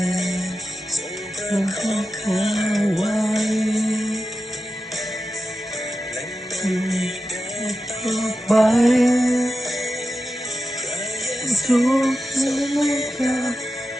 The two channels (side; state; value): both; normal; correlation 0.92